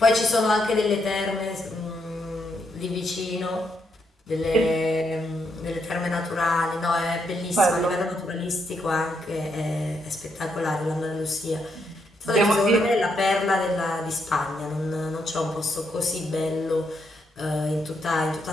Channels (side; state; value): both; normal; correlation 0.78